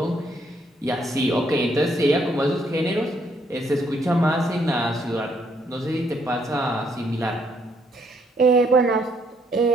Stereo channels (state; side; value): normal; both; correlation 0.71